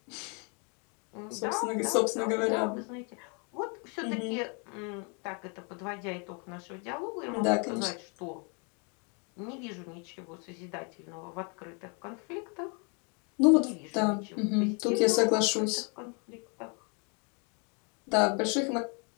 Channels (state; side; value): quieter; right; 35.5 dB